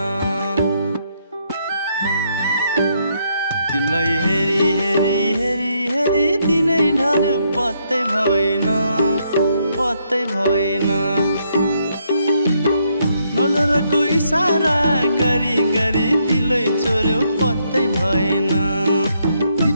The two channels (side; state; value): both; inverted; correlation -0.75